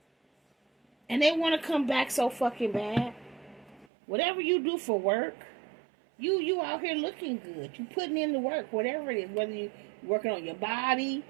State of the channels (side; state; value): left; drops out; at 3.9 s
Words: And they want to come back so fucking bad. Whatever you do for work, you out here looking good. You putting in the work, whatever it is. Whether you working on your body,